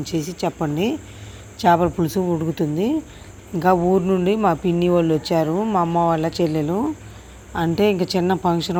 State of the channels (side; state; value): both; identical; correlation 1.00